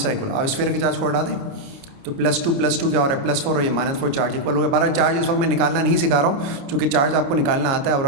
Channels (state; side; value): late; left; 29 ms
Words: चार्ज इक्वल। अब स्फीयर के चार्ज को हटा दें तो +2 क्या हो रहा है, +4 और ये -4 चार्ज इक्वल हो गया। 12 चार्ज इस वक्त मैं निकालना नहीं सिखा रहा हूँ, चूँकि चार्ज आपको निकालना आता है और